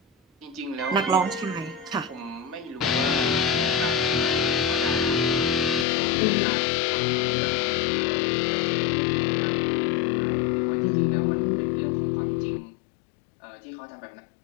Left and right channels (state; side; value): drops out; right; at 5.9 s